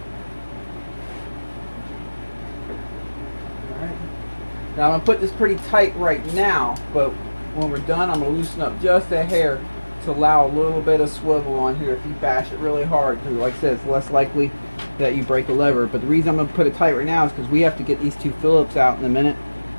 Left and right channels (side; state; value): both; inverted; correlation -1.00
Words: Now I'm going to put this pretty tight right now, but when we're done I'm going to loosen up just a hair to allow a little bit of swivel on here if you bash it really hard, because like I said, it's less likely that you break a lever. But the reason I'm going to put it tight right now is because we have to get these two Phillips out in a minute.